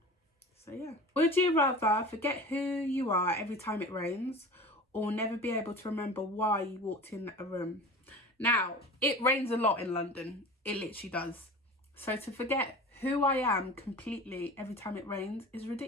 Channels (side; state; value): both; normal; correlation 0.36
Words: So yeah. Would you rather forget who you are every time it rains, or never be able to remember why you walked in a room? Now, it rains a lot in London. It literally does. So to forget who I am completely every time it rains is